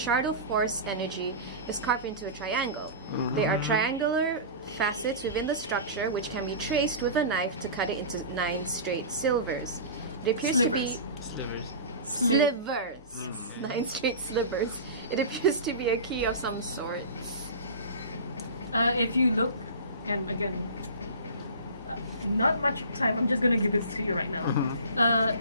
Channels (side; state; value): both; inverted; correlation -0.32